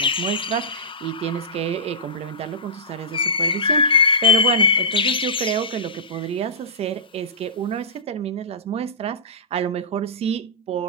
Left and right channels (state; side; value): normal; both; correlation -0.18